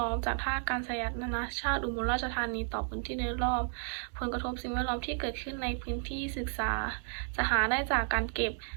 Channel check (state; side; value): silent; left; 56 dB below the other